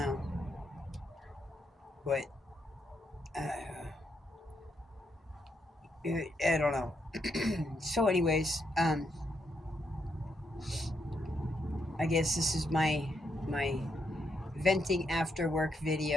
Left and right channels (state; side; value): normal; both; correlation 0.78